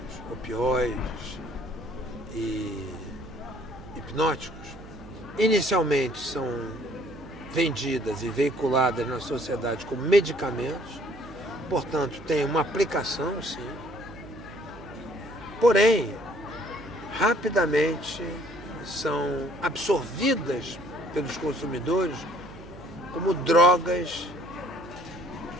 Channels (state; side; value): noise; right; hum, 17 dB below the sound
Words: opioides e hipnóticos, inicialmente são vendidas e veiculadas na sociedade como medicamentos, portanto, tem uma aplicação, sim. Porém, rapidamente são absorvidas pelos consumidores como drogas